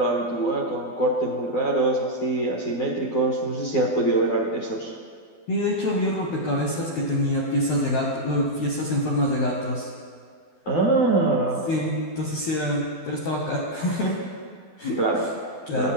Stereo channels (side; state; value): right; late; 12 ms